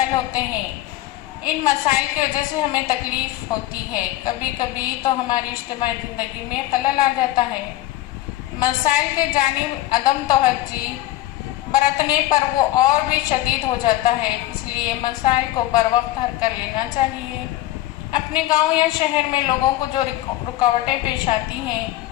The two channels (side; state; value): right; quieter; 15.6 dB